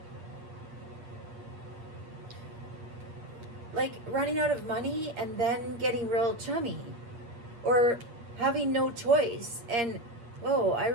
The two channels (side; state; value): left; late; 8.6 ms